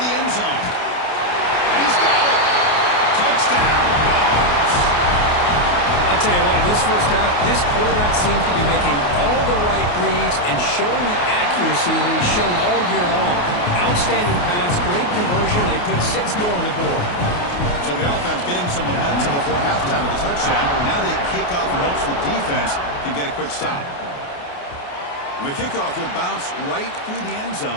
end zone. And he's got it. Touchdown, Dogs. I'll tell you what, in this first half, this quarterback seems to be making all the right reads and showing the accuracy that he's shown all year long. Outstanding pass, great conversion. They put 6 more on the board. So the offense getting some momentum before halftime of the touchdown. Now they kick off in hopes the defense can get a quick stop. And the kickoff will bounce right through the end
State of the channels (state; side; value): late; right; 28 ms